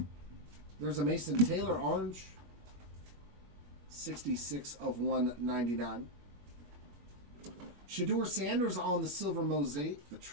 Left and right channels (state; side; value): late; left; 21 ms